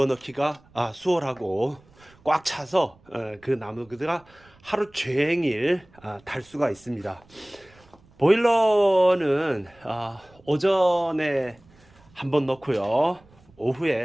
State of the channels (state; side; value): noise; right; rumble, 29 dB below the sound